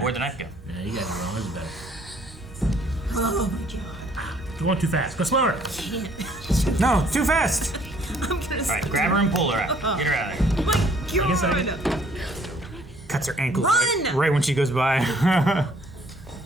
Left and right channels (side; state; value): both; normal; correlation 0.61